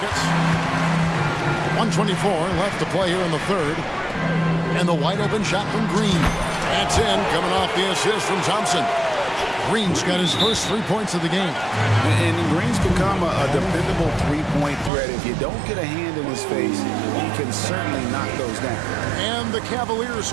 1:24 left to play here in the third. And the wide open shot from Green. That's in, coming off the assist from Thompson. Green's got his first 3 points of the game. And Green's become a dependable three-point threat. If you don't get a hand in his face, he can certainly knock those down. And the Cavaliers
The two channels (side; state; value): left; drops out; at 14.9 s